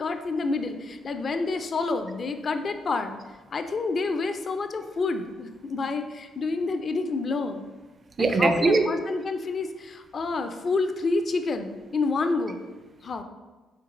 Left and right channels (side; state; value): both; normal; correlation 0.81